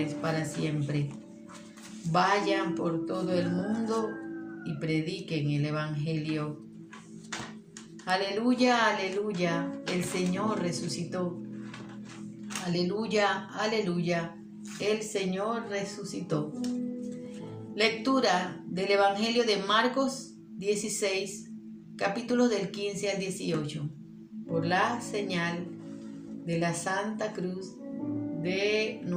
para siempre. Vayan por todo el mundo y prediquen el Evangelio. Aleluya, aleluya, el Señor resucitó. Aleluya, aleluya, el Señor resucitó. Lectura del Evangelio de Marcos 16, capítulos del 15 al 18. Por la señal de la Santa Cruz de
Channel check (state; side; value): identical; both; correlation 1.00